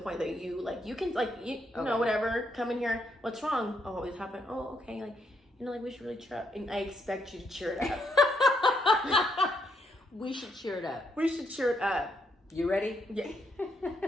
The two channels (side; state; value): both; normal; correlation 0.76